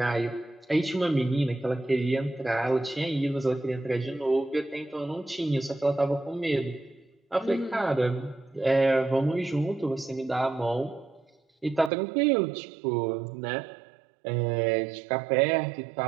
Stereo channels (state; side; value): drops out; left; at 11.9 s